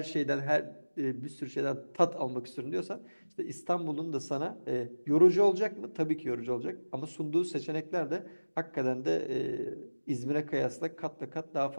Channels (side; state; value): both; inverted; correlation -1.00